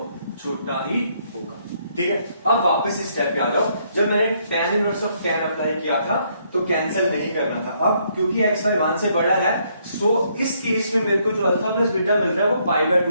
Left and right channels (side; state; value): both; inverted; correlation -0.71